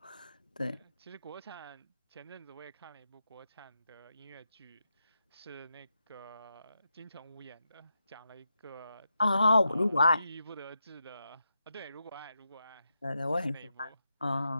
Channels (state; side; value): inverted; both; correlation -0.86